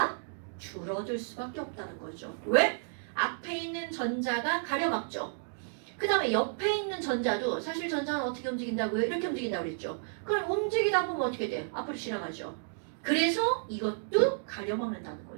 줄어들 수밖에 없다는 거죠. 왜? 앞에 있는 전자가 가려막죠. 그 다음에 옆에 있는 전자도 사실 전자는 어떻게 움직인다고요? 이렇게 움직인다고 그랬죠. 그럼 움직이다 보면 어떻게 돼? 앞으로 지나가죠. 그래서 이것도 가려막는다는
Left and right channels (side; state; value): left; silent; digital silence